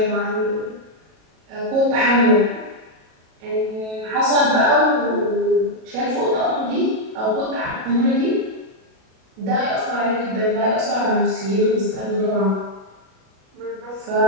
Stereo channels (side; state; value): left; late; 37 ms